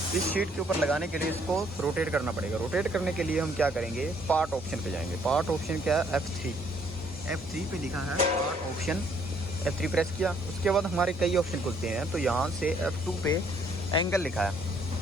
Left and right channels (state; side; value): normal; both; correlation 0.66